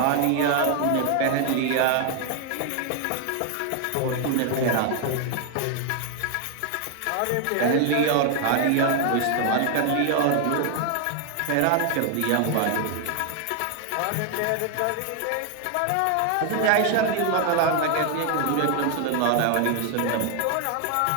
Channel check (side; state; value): both; different; correlation 0.01